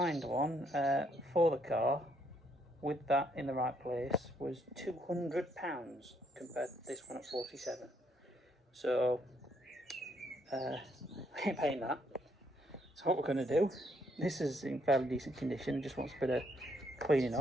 one for the car with that in the right place was £200 compared to this one at 47. So I ain't paying that. So what we're going to do, this is in fairly decent condition, just wants a bit of cleaning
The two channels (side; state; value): both; normal; correlation 0.72